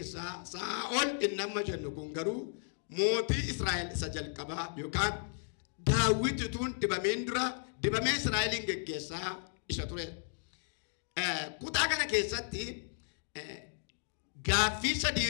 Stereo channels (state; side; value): silent; right; digital silence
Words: Saa'ol inni amma jennu kun garuu mootii Israa'el isa jalqabaa yookaan Daawitituun dibameen dura dibamee Israa'eliin geggeessaa isa ture. Kutaa kana keessatti gaaffii